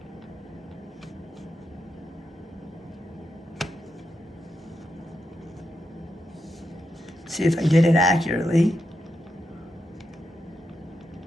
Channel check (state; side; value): normal; both; correlation 0.85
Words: See if I did it accurately.